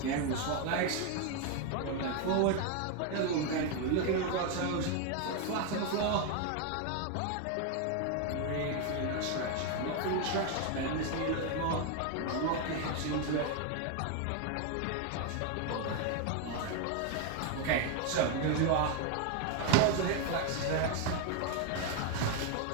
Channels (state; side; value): different; both; correlation 0.01